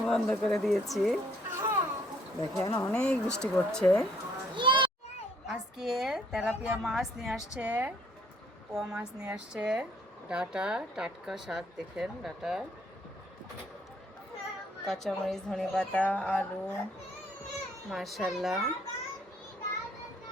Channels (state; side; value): normal; both; correlation 0.65